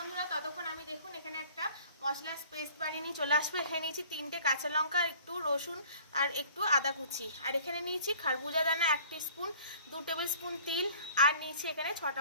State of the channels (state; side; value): inverted; both; correlation -0.50